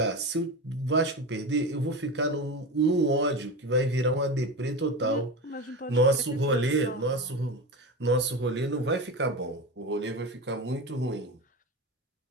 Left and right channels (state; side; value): normal; both; correlation 0.24